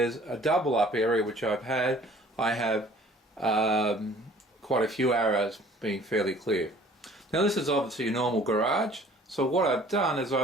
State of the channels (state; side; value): normal; both; correlation 0.52